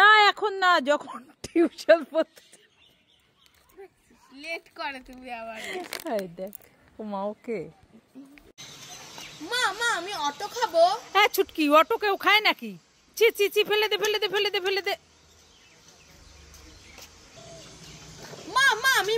এখন না, যখন টিউশন পড়তে লেট করে তুমি আবার। এই দেখ মা ওকে। মা মা আমি অটো খাবো। হ্যাঁ ছুটকি, অটো কেউ খায় নাকি? চি চি চি, ফেলে দে ফেলে দে ফেলে দে ফেলে দে। মা মা আমি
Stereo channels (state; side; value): identical; both; correlation 1.00